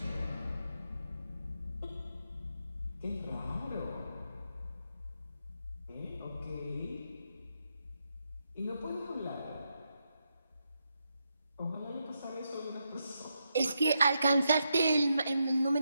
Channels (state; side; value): inverted; both; correlation -0.83